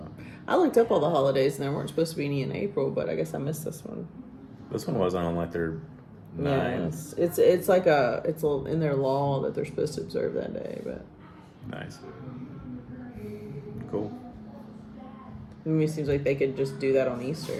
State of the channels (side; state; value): both; identical; correlation 1.00